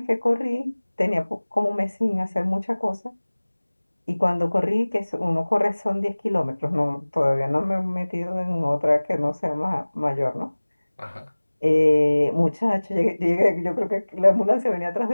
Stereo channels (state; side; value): inverted; both; correlation -1.00